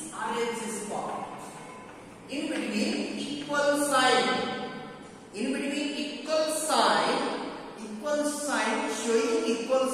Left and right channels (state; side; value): identical; both; correlation 1.00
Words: RHS part. In between equal sign. In between equal sign showing equal